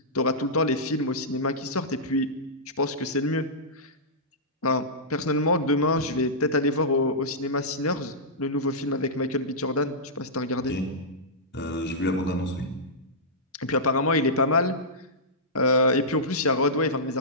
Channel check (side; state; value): both; normal; correlation -0.14